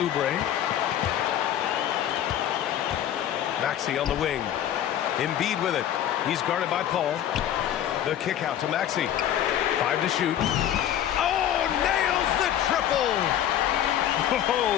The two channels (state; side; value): quieter; right; 10.8 dB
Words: Maxey on the wing. Embiid with it. He's guarded by Paul. The kick out to Maxey. 5 to shoot. Oh, nails the triple!